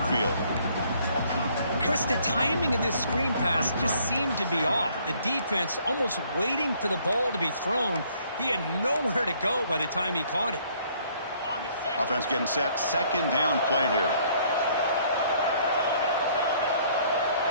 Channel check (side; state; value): both; inverted; correlation -0.62